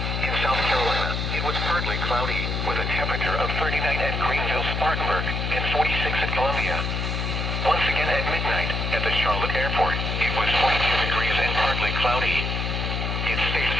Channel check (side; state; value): left; noise; hum, 1 dB below the sound